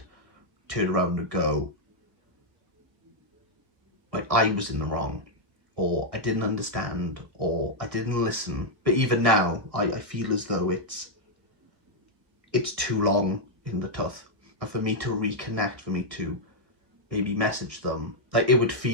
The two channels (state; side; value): late; left; 1.4 ms